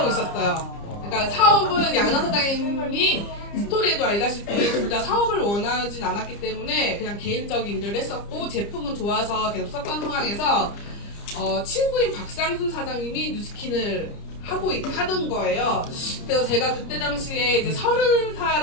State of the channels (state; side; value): late; right; 30 ms